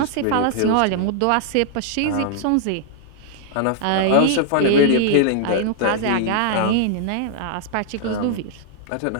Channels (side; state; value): both; different; correlation -0.01